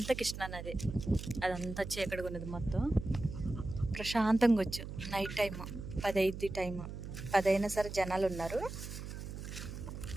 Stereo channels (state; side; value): noise; right; hum, 8 dB below the sound